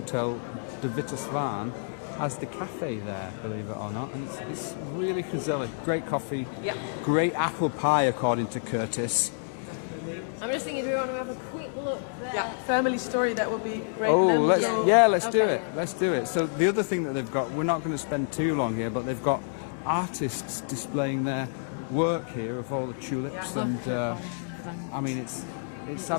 de Witte Zwaan as the cafe there, believe it or not. And it's really gezellig. Great coffee. Yeah. Great apple pie, according to Curtis. I'm just thinking, do we want to have a quick look there? Yeah, family story, that would be great. Oh, Then let's we'll- do it. Let's do it. So the other thing that they've got, we're not going to spend too long here, but they've got artists displaying their work here of all the tulips. Look And at all of that. I mean, it's is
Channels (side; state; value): right; silent; digital silence